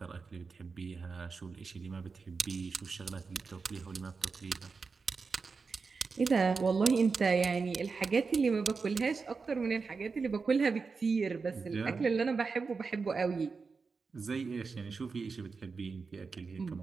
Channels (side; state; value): left; quieter; 4.7 dB